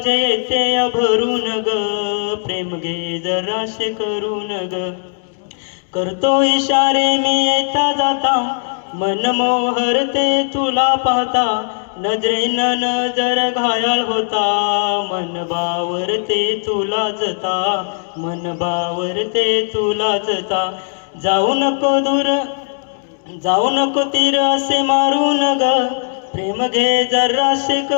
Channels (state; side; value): silent; right; 60 dB below the other